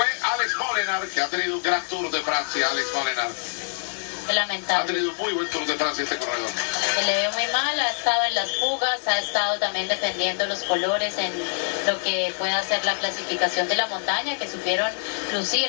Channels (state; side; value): silent; right; 62 dB below the other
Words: Alex Molenaar, que ha tenido un gran Tour de Francia. Alex Molenaar Lamentable. ha tenido un muy buen Tour de Francia este corredor. Se le vio muy mal, ha estado en las fugas, ha estado también defendiendo los colores en lo que pueda ser la clasificación de la montaña, que supieron